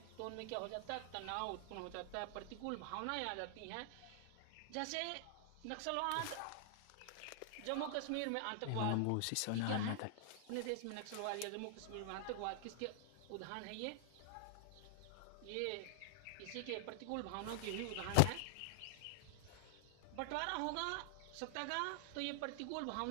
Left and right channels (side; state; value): both; different; correlation -0.01